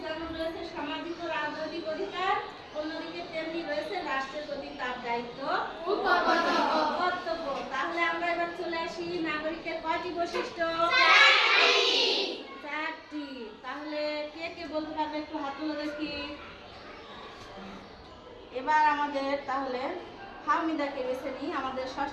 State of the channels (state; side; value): identical; both; correlation 1.00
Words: যেমন রয়েছে সামাজিক ও রাজনৈতিক অধিকার, অন্যদিকে তেমনি রয়েছে রাষ্ট্রের প্রতি তার দায়িত্ব ও কর্তব্য। তাহলে আমরা এবার চলে আসি নাগরিকের কয়টি বৈশিষ্ট্য? চারটি। তাহলে কে কে বলতে পারবে? একটু হাত তুলে দেখি। এবার আমাদের তাহলে ফাহমিদাকে বেছে নিই, আমাদের